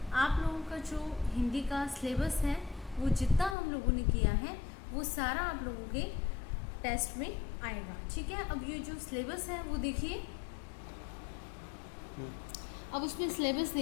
आप लोगों का जो हिंदी का syllabus है वो जितना हम लोगों ने किया है वो सारा आप लोगों के टेस्ट में आएगा। ठीक है, अब ये जो सिलेबस है वो देखिए। अब उसमें सिलेबस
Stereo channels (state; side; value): drops out; right; at 3.6 s